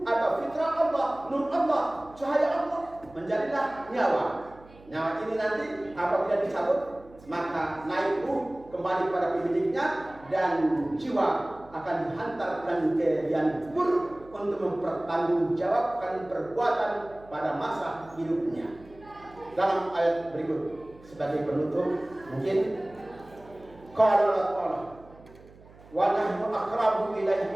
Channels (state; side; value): noise; right; hum, 23 dB below the sound